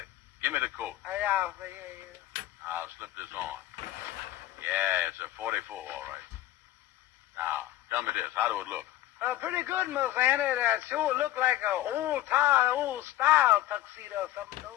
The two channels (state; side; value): quieter; right; 14.5 dB